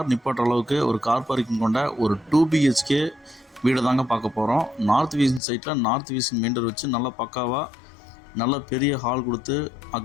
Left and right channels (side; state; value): right; drops out; at 5.4 s